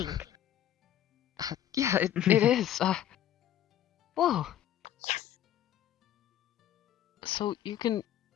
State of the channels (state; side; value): quieter; right; 11.3 dB